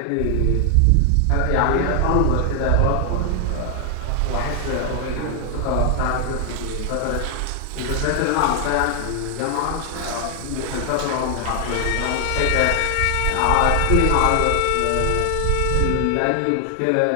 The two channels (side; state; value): both; different; correlation 0.00